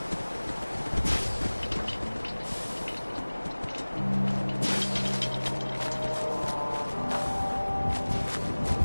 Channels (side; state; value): both; inverted; correlation -1.00